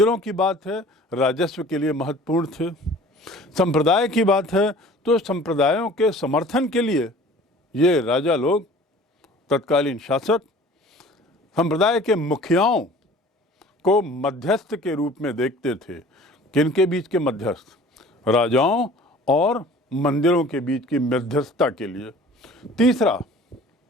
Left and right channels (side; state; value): both; normal; correlation 0.47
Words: की बात है राजस्व के लिए महत्वपूर्ण थे, संप्रदाय की बात है तो संप्रदायों के समर्थन के लिए ये राजा लोग, तत्कालीन शासक, संप्रदाय के मुखियाओं को मध्यस्थ के रूप में देखते थे। किनके बीच के मध्यस्थ? राजाओं और मंदिरों के बीच की मध्यस्थता के लिए। तीसरा,